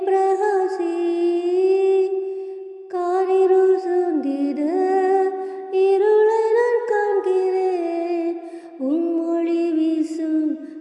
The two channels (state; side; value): identical; both; correlation 1.00